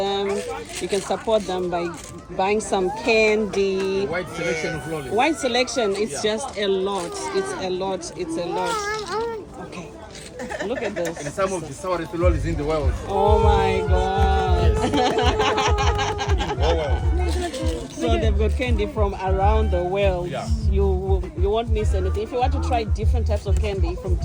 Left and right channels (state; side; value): identical; both; correlation 1.00